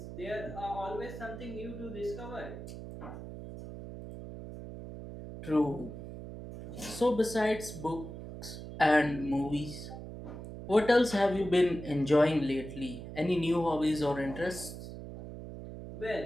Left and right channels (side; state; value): right; noise; hum, 11 dB below the sound